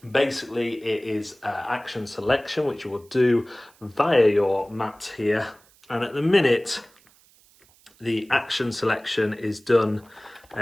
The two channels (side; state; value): right; noise; hiss, 30 dB below the sound